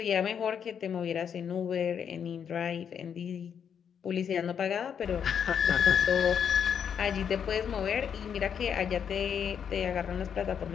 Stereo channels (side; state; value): right; quieter; 7.8 dB